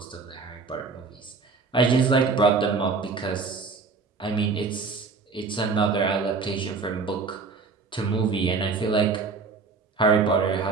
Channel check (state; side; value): quieter; left; 4.6 dB